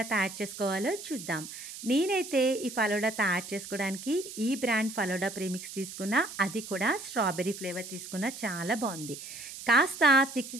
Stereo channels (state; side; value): noise; right; hiss, 11 dB below the sound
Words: తయారు చేసుకోవాలో చూద్దాం. నేనైతే ఈ ఫలోడా తయారు చేసుకోవడానికి ఈ బ్రాండ్ ఫలోడా ప్రీమిక్స్ తీసుకున్నా, అది కూడా స్ట్రాబెర్రీ ఫ్లేవర్ తీసుకున్నా. చాలా బాగుంది. కాస్త